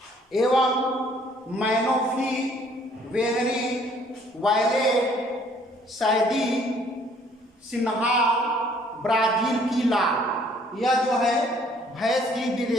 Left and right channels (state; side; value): normal; both; correlation 0.61